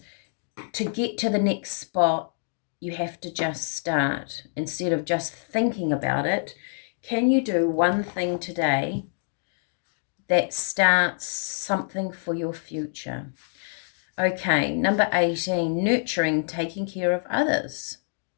to get to the next spot, you have to just start. Instead of just thinking about it, can you do one thing today that starts something for your future? Okay, number 18, nurturing, taking care of others.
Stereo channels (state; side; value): silent; right; digital silence